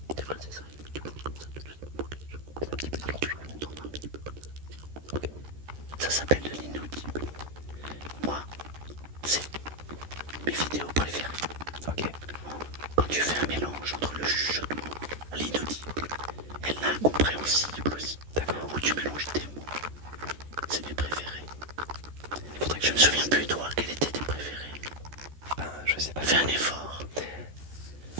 c'est vrai, c'est ça. Tu parles comme ça tout de suite pour que les gens comprennent un petit peu. Alors tu me tournes un petit peu comme ça. Ça s'appelle de l'inaudible. Moi, c'est mes vidéos préférées. Ok. Quand tu fais un mélange entre le chuchotement, l'inaudible et l'incompréhensible aussi, D'accord. où tu mélanges tes mots, c'est mes préférés. Il faudrait que Je me souviens plus, toi, quels étaient tes préférés. Ben, je sais pas. Fais un effort.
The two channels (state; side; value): late; left; 13 ms